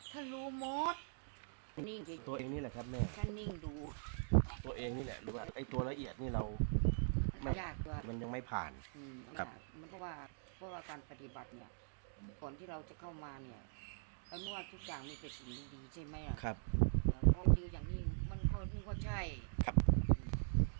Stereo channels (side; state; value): left; silent; digital silence